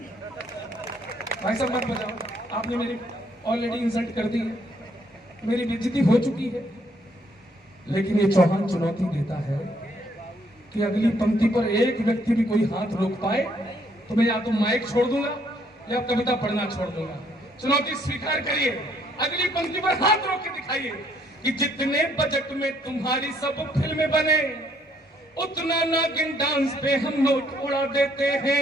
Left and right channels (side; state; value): both; normal; correlation 0.68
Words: भाई साहब मत बजाओ, आपने मेरी ऑलरेडी इंसल्ट कर दी है, मेरी बेइज्जती हो चुकी है। लेकिन ये चौहान चुनौती देता है कि अगली पंक्ति पर एक व्यक्ति भी कोई हाथ रोक पाए तो मैं या तो माइक छोड़ दूंगा या कविता पढ़ना छोड़ दूंगा। चुनौती स्वीकार करिए, अगली पंक्ति पर हाथ रोक के दिखाइए कि जितने बजट में तुम्हारी सब फिल्में बने उतना नागिन डांस पे हम नोट उड़ा देते